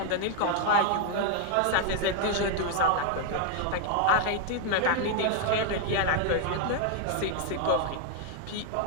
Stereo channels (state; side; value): different; both; correlation 0.00